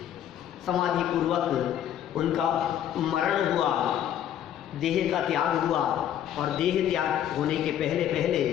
समाधि पूर्वक उनका मरण हुआ, देह का त्याग हुआ और देह त्याग होने के पहले पहले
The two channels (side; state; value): right; quieter; 10.6 dB